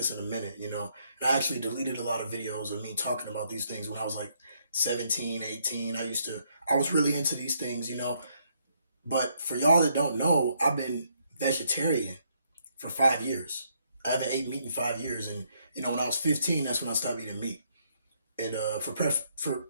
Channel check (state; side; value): inverted; both; correlation -0.72